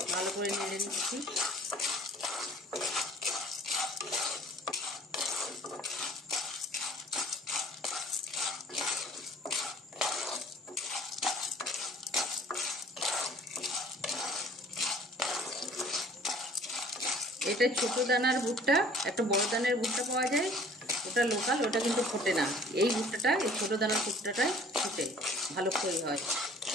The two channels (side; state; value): both; normal; correlation 0.52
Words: ভালো করে নেড়ে নিচ্ছি। এটা ছোট দানার ভুট্টা, একটা বড় দানার ভুট্টা পাওয়া যায়, ওটা লোকাল, ওটা কিন্তু ফোটে না। এই ভুট্টাটা, এই ছোট দানার ভুট্টাটাই ফোটে, ভালো করে হয়।